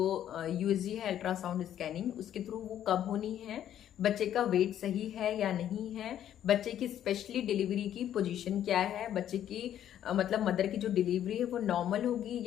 USG है अल्ट्रासाउंड स्कैनिंग, उसके थ्रू वो कब होनी है, बच्चे का वेट सही है या नहीं है, बच्चे की स्पेशली डिलीवरी की पोजीशन क्या है, बच्चे की मतलब मदर की जो डिलीवरी है वो नॉर्मल होगी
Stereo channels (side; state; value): right; quieter; 10.8 dB